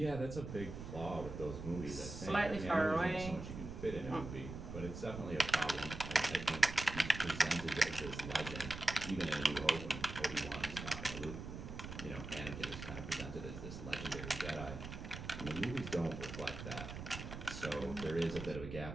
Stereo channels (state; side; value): noise; right; rumble, 8 dB below the sound